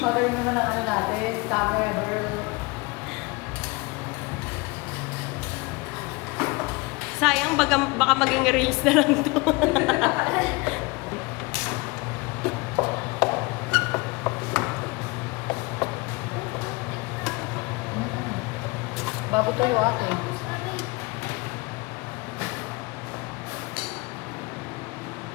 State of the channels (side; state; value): right; quieter; 25.5 dB